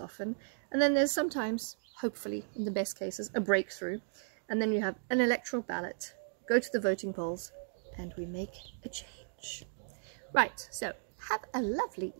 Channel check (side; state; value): left; silent; digital silence